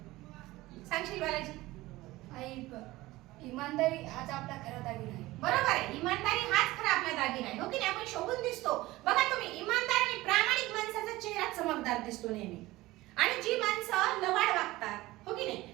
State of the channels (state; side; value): quieter; left; 18.7 dB